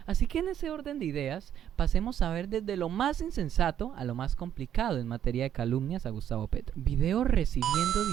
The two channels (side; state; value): left; quieter; 10.1 dB